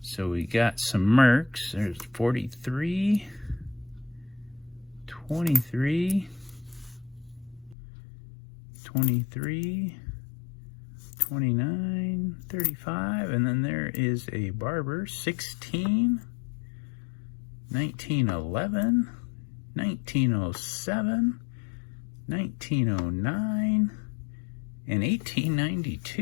So we got some Mercs. There's 43, 23, 23, 29, 35, and then there is a Barber, 16, 1911, 1907, 1909, and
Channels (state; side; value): drops out; right; at 7.8 s